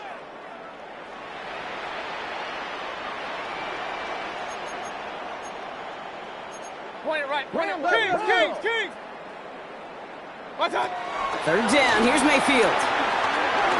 Point it right. Kings. What's up? 3rd down. Here's Mayfield.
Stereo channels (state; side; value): identical; both; correlation 1.00